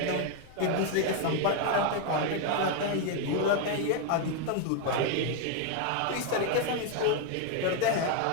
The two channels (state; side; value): different; both; correlation 0.01